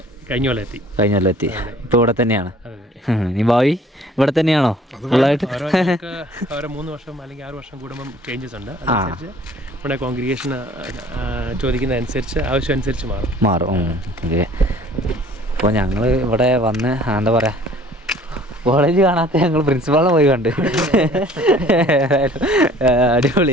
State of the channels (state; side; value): normal; both; correlation 0.52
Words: കഴിഞ്ഞ കൊല്ലം എത്തി. ഇപ്പൊ ഇവിടെ തന്നെയാണ്. നീ ഭാവി ഇവിടെ തന്നെയാണോ ഫുള്ളായിട്ട്? ഓരോ 3 വർഷം അല്ലെങ്കിൽ 6 വർഷം കൂടുമ്പം ചേഞ്ചസ് ഉണ്ട്. അതനുസരിച്ച് ഇവിടെ കോൺഗ്രിഗേഷൻ ചോദിക്കുന്ന അനുസരിച്ച് ആവശ്യം അനുസരിച്ച് മാറും. ഓക്കെ. അപ്പോൾ ഞങ്ങൾ ഇവിടെ വന്ന് എന്താ പറയുക, കോളേജ് കാണാത്ത ഞങ്ങൾ പ്രിൻസിപ്പാളിനെ പോയി കണ്ട്.